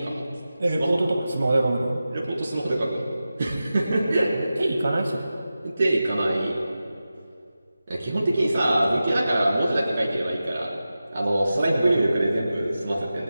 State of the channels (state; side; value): inverted; both; correlation -0.93